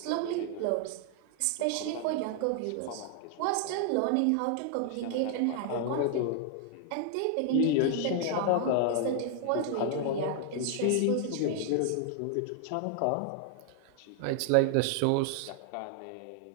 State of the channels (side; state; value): both; different; correlation 0.00